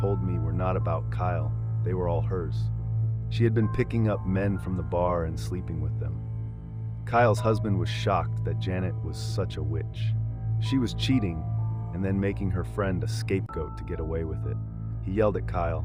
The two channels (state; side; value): identical; both; correlation 1.00